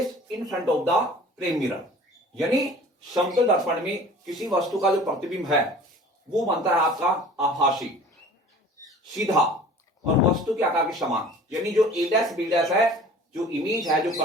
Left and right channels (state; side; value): normal; both; correlation 0.46